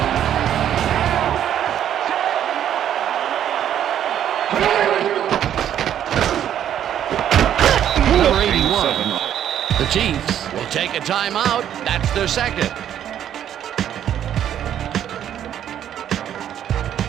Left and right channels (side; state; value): left; quieter; 10.3 dB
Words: Number 81. The Chiefs will take a timeout. That's their second.